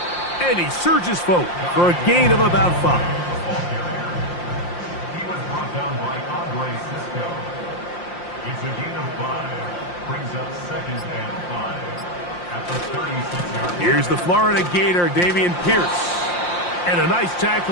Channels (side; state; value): right; late; 5.7 ms